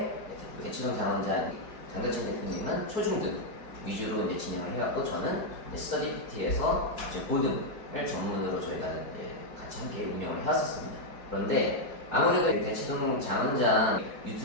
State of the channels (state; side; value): late; right; 4.9 ms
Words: 대치동 장원장 장덕진 대표님은 초중등 위주로 이제 진행을 해왔고 저는 스터디 PT에서 이제 고등을 전문으로 저희가 이제 같이 함께 운영을 해왔었습니다. 그런데 아무래도 대치동 장원장